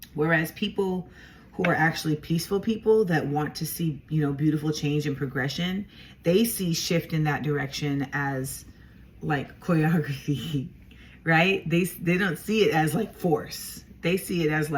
Whereas people who are actually peaceful people that want to see, you know, beautiful change and progression, they see shift in that direction as like choreography, right? They don't see it as like force. They see it as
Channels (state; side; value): identical; both; correlation 1.00